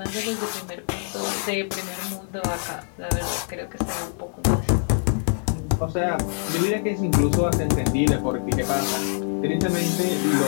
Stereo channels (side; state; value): right; silent; 60 dB below the other